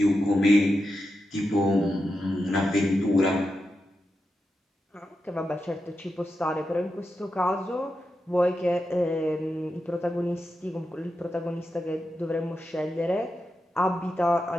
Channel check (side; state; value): both; normal; correlation 0.89